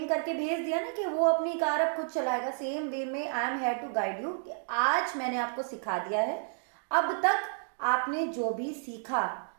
करके भेज दिया ना कि वो अपनी कार अब खुद चलाएगा, सेम वे में I am here to guide you कि आज मैंने आपको सिखा दिया है, अब तक आपने जो भी सीखा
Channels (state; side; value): silent; left; digital silence